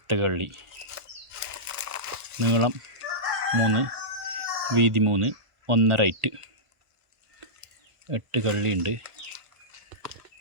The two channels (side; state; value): left; late; 1.4 ms